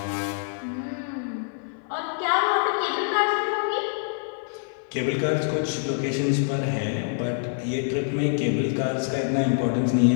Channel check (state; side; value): silent; right; 61 dB below the other